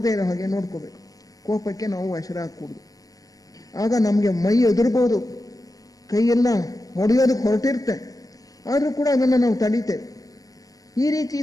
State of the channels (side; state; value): right; late; 0.18 ms